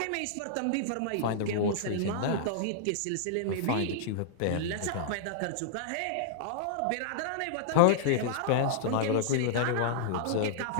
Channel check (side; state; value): both; different; correlation -0.01